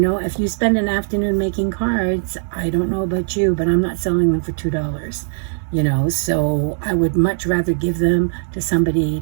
know, if you spend an afternoon making cards, I don't know about you, but I'm not selling them for $2, you know, so I would much rather give them to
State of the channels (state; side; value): silent; left; 66 dB below the other